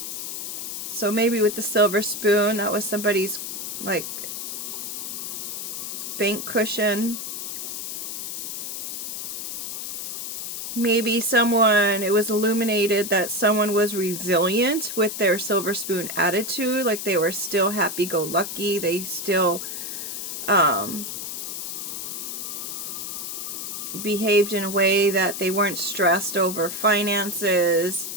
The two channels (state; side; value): noise; left; hiss, 6 dB below the sound